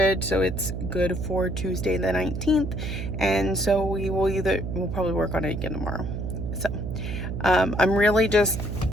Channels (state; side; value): noise; right; hum, 4 dB below the sound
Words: so it's good for Tuesday the 19th. And so we'll probably work on it again tomorrow. So I'm really just